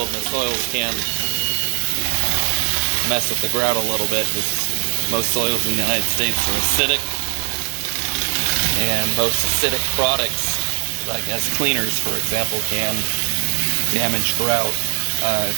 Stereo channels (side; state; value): left; silent; digital silence